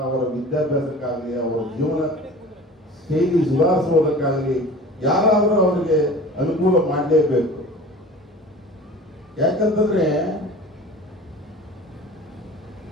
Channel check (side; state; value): both; normal; correlation 0.40